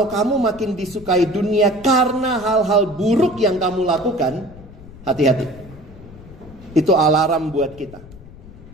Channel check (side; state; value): left; noise; rumble, 19 dB below the sound